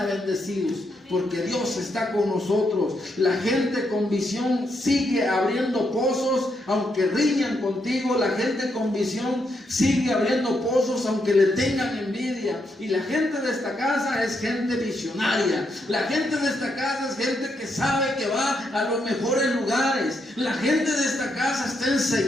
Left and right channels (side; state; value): both; normal; correlation 0.79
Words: bendecidos, porque Dios está con nosotros. La gente con visión sigue abriendo pozos aunque riñan contigo. La gente con visión sigue abriendo pozos aunque le tengan envidia. Y la gente de esta casa es gente visionaria. La gente de esta casa es gente que sabe que va a los mejores lugares. La gente de esta casa está